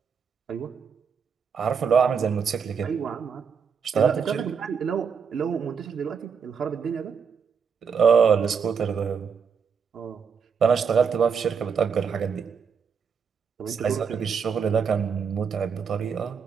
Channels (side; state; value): left; quieter; 6.4 dB